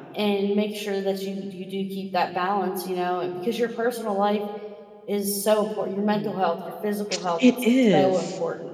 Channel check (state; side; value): identical; both; correlation 1.00